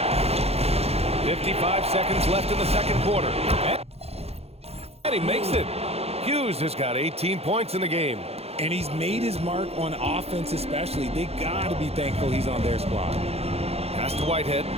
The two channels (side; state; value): left; late; 0.29 ms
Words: 55 seconds left in the second quarter. And he makes it. Hughes has got 18 points in the game. And he's made his mark on offense especially. They got to be thankful he's on their squad. Pass to Whitehead.